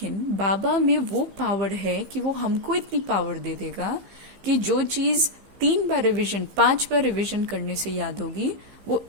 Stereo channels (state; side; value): late; left; 15 ms